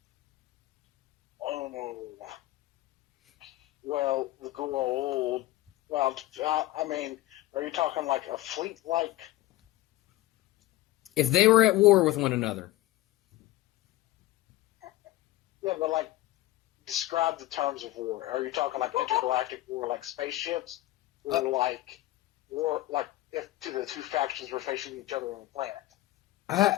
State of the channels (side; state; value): right; quieter; 16.3 dB